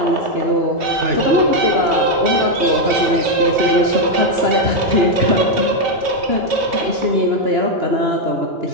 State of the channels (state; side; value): late; left; 3.1 ms